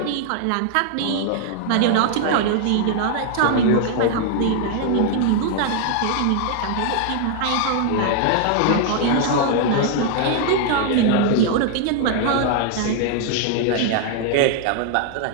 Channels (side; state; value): both; different; correlation 0.00